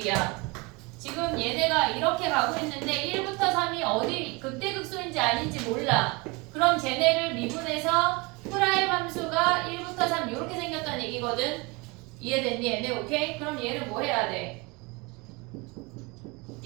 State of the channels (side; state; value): left; quieter; 26.9 dB